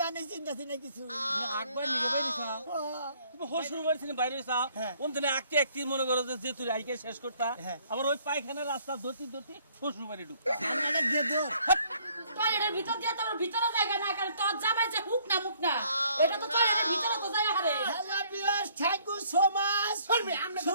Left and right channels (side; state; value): both; inverted; correlation -0.62